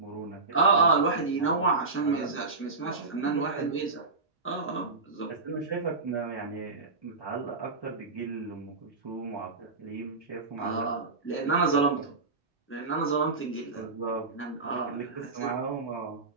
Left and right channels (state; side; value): quieter; left; 3.9 dB